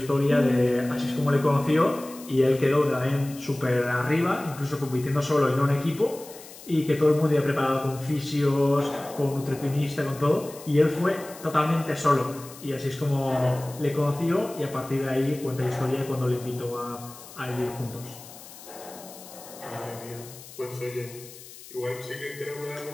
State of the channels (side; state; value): left; noise; hiss, 17 dB below the sound